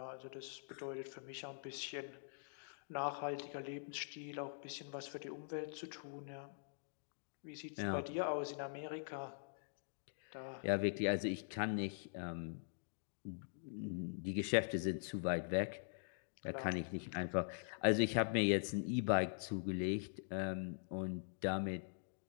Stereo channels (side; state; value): right; silent; digital silence